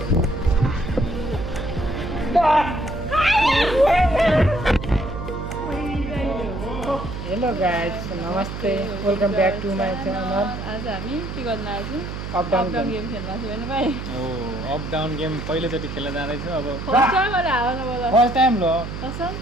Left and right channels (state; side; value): noise; right; hum, 7 dB below the sound